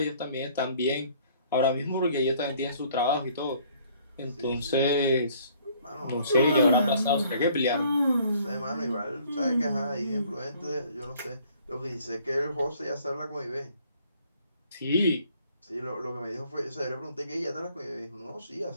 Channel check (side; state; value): both; inverted; correlation -0.59